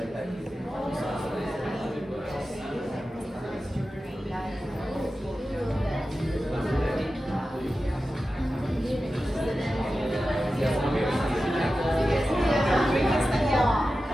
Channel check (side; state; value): both; normal; correlation 0.93